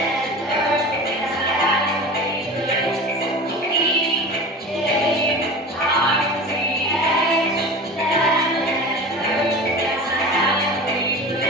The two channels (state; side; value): normal; both; correlation 0.34